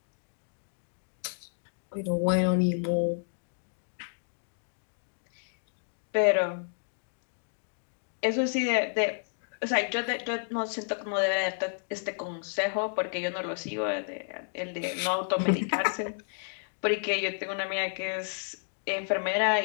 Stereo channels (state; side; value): silent; right; digital silence